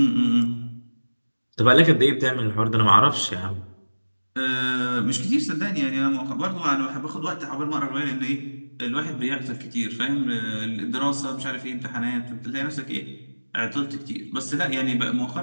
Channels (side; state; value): both; inverted; correlation -1.00